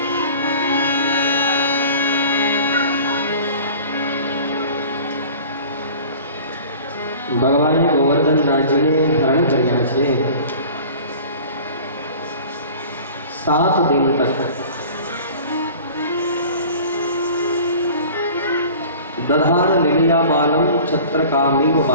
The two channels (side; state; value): both; inverted; correlation -0.43